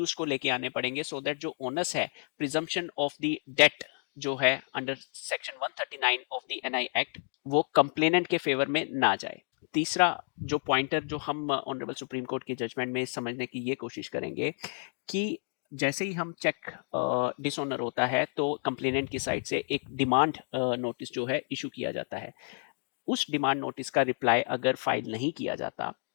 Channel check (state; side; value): silent; right; 57 dB below the other